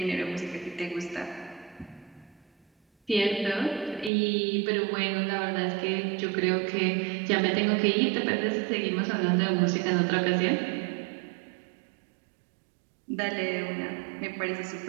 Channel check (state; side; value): drops out; left; at 4.1 s